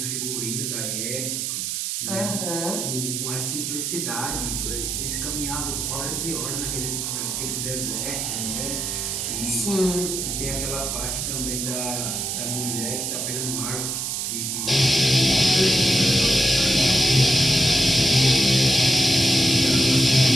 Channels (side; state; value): right; noise; hiss, 2 dB below the sound